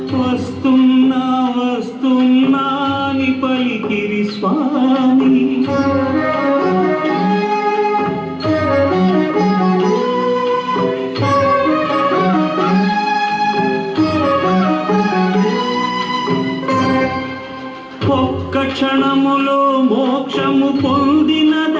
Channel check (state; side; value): identical; both; correlation 1.00